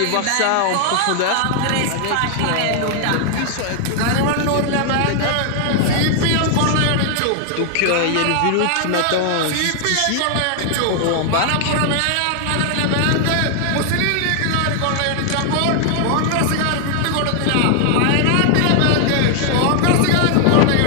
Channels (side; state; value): both; different; correlation 0.00